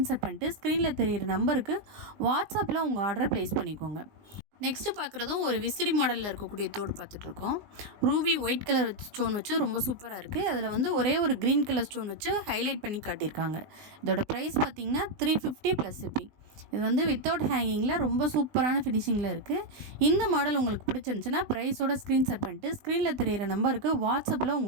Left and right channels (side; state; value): left; late; 19 ms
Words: பண்ணிட்டு ஸ்க்ரீனில் தெரிகிற நம்பருக்கு வாட்ஸ்அப்பில் உங்கள் ஆர்டரை ப்ளேஸ் பண்ணிக்கோங்க. நெக்ஸ்ட்டு பார்க்குறதும் ஒரு விசிறி மாடலில் இருக்கக்கூடிய தோடு பார்த்துட்ருக்கோம். ரூபி ஒயிட் கலர் ஸ்டோன் வச்சு ரொம்ப சூப்பராக இருக்குது. அதில் வந்து ஒரே ஒரு க்ரீன் கலர் ஸ்டோன் வச்சு ஹைலைட் பண்ணி காட்டியிருக்காங்க. இதோட ப்ரைஸ் பார்த்திங்கன்னா 350 ப்ளஸ் ஷிப்பிங். இது வந்து வித்தவுட் ஹேங்கிங்கில் ரொம்ப சூப்பரான ஃபினிஷிங்கில் இருக்குது. இந்த மாடல் உங்களுக்கு பிடிச்சிருந்துச்சுன்னா ப்ரைஸோட ஸ்க்ரீன்ஷாட் பண்ணிட்டு ஸ்க்ரீனில் தெரிகிற நம்பருக்கு வாட்ஸ்அப்பில்